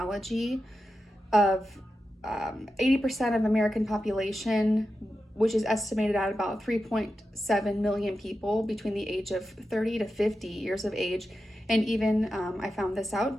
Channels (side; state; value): both; normal; correlation 0.90